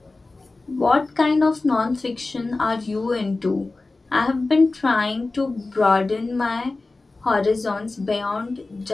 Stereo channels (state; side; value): quieter; right; 3.4 dB